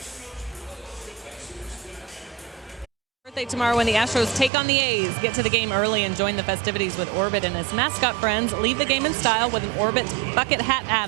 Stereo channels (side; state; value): left; drops out; at 4.5 s